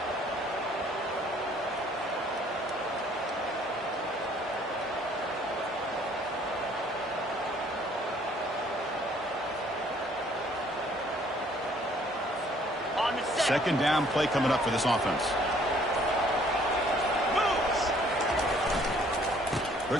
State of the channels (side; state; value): both; normal; correlation 0.60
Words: Second down play coming up for this offense.